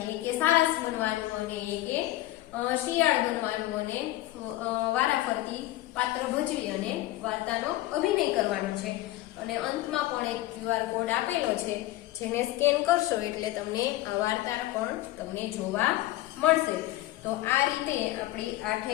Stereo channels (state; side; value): quieter; right; 16.4 dB